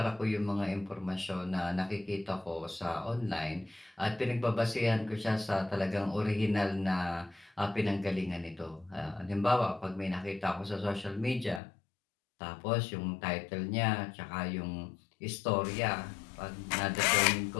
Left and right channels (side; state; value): right; drops out; at 11.6 s